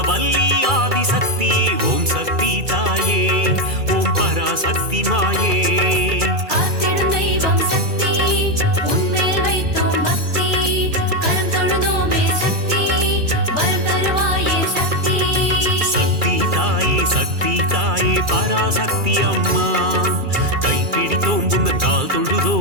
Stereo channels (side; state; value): left; late; 2.3 ms